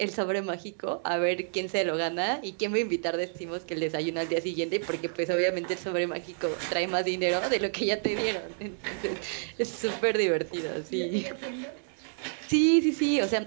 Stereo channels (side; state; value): left; silent; 58 dB below the other